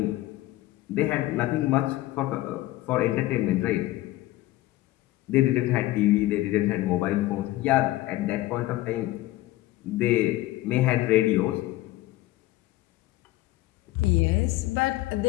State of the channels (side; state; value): right; quieter; 16.9 dB